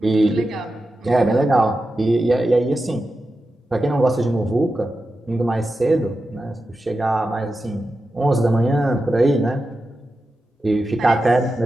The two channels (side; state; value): both; normal; correlation 0.91